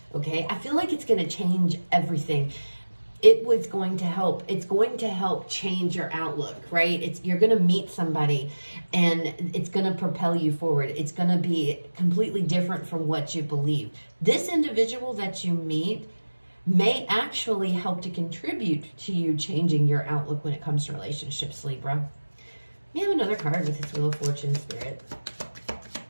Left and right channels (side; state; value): both; inverted; correlation -1.00